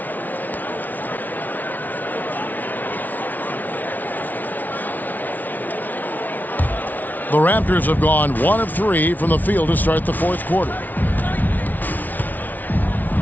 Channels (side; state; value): right; late; 0.081 ms